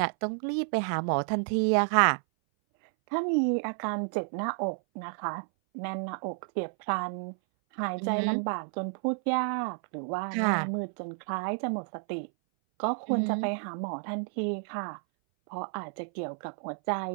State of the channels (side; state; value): left; silent; 57 dB below the other